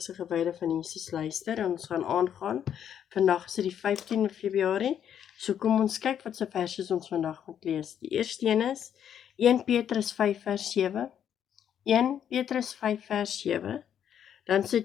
gewyde van Jesus luister en ons gaan aangaan. Vandag is dit die 15de Februarie. So kom ons kyk wat se verse ons vandag moet lees. Die eerste een is 1 Petrus 5 vers 7. 1 Petrus 5 vers 7. Dan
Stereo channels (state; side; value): quieter; right; 9.2 dB